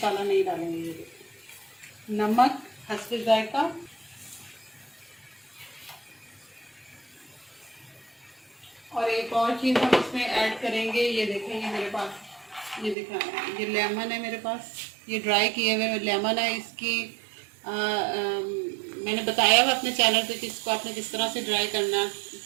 नहीं डालेंगे। नमक हस्बे जायका। और एक और चीज़ हम इसमें ऐड करेंगे, ये देखेंगे मेरे पास ये दिखा ये लेमन है मेरे पास, ये ड्राई किए हुए लेमन है। इसकी मैंने बताया हुआ अपने चैनल पे कि इसको आपने किस तरह से ड्राई करना।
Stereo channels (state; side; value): drops out; left; at 13.0 s